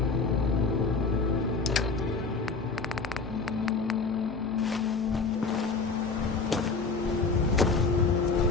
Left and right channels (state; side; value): quieter; right; 4.4 dB